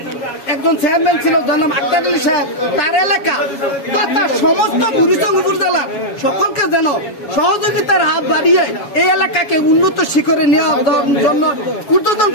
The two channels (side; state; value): right; late; 7.2 ms